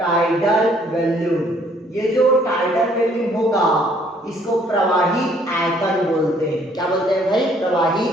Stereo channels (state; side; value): normal; both; correlation 0.63